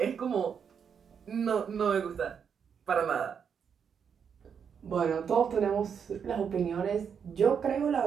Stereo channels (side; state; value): left; quieter; 7.1 dB